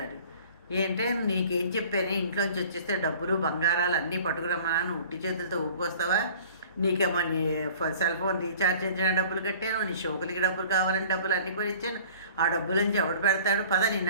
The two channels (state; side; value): inverted; both; correlation -0.48